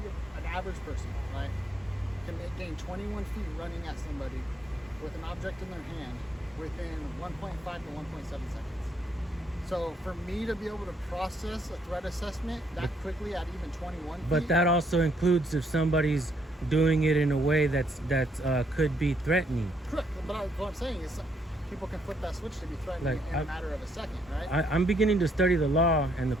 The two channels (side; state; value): both; normal; correlation 0.72